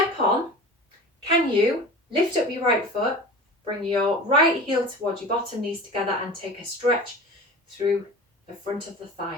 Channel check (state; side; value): normal; both; correlation 0.35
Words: on. Can you lift up your right foot, bring your right heel towards your bottom knees together and take a stretch through the front of the